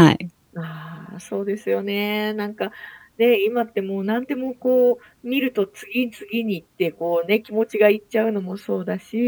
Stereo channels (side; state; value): both; identical; correlation 1.00